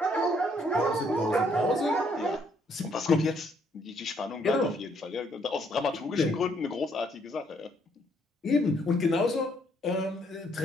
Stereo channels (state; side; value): normal; both; correlation 0.69